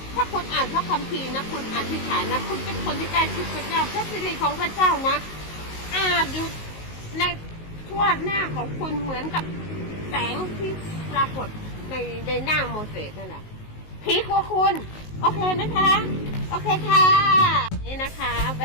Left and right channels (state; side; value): late; right; 19 ms